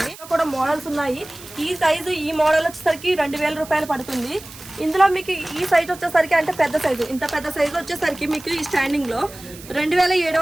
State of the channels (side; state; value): right; noise; hiss, 17 dB below the sound